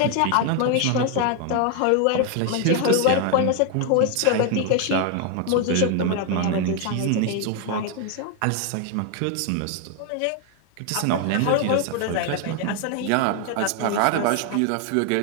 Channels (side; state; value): both; different; correlation 0.00